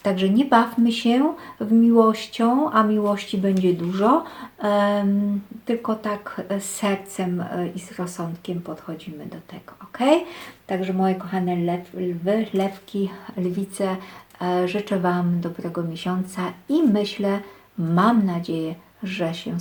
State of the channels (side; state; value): both; identical; correlation 1.00